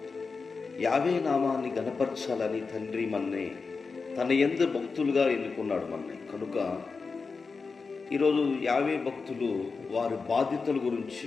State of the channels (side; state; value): right; quieter; 4.6 dB